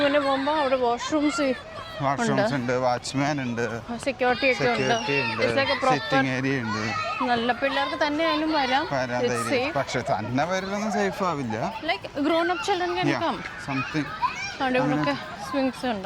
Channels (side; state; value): both; identical; correlation 1.00